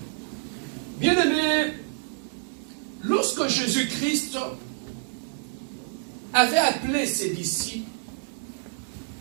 Bien-aimés, lorsque Jésus-Christ avait appelé ses disciples,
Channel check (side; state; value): left; silent; digital silence